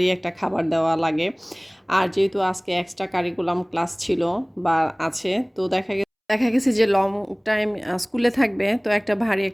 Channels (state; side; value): identical; both; correlation 1.00